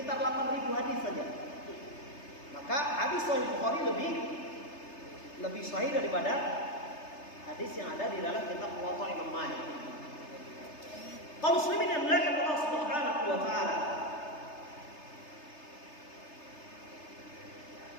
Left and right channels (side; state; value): right; late; 3.3 ms